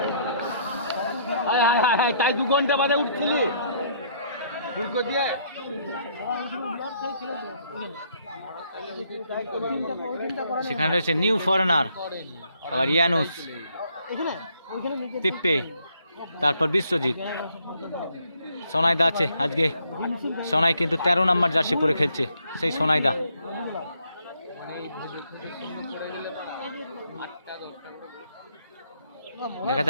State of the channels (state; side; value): inverted; both; correlation -0.69